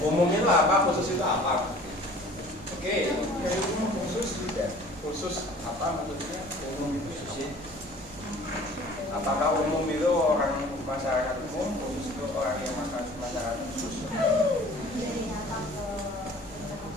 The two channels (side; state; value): both; normal; correlation 0.48